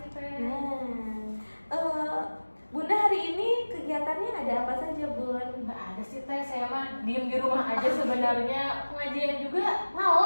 Teh. Nah, Bunda hari ini kegiatannya ada apa saja Bun? Nggak ada sih Teh, saya mah diem di rumah aja sebenarnya. Pengajian juga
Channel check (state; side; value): inverted; both; correlation -1.00